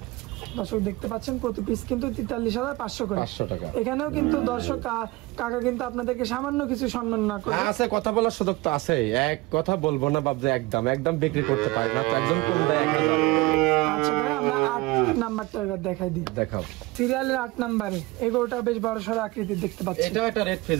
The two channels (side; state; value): left; quieter; 21.6 dB